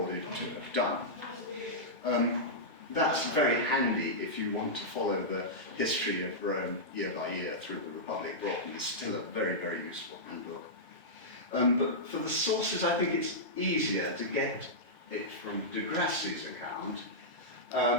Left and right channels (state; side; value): normal; both; correlation -0.11